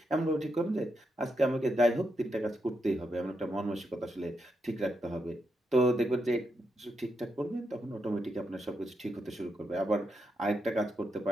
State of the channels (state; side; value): normal; both; correlation 0.83